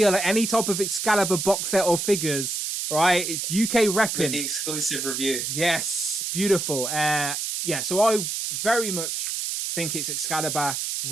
any type of Excalibur box set or figures. Right, it's UK repping with the exclusive review. Yes, beautiful. So I very much think it's Excalibur.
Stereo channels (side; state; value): right; noise; hiss, 2 dB below the sound